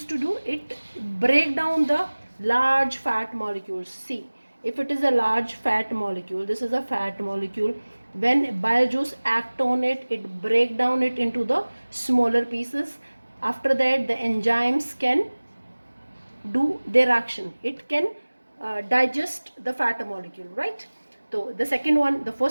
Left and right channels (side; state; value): both; inverted; correlation -1.00